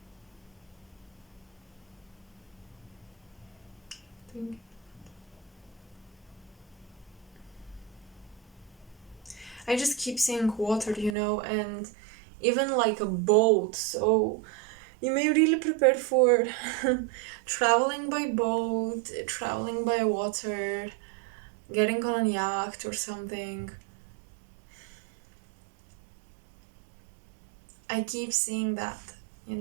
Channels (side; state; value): left; drops out; at 11.2 s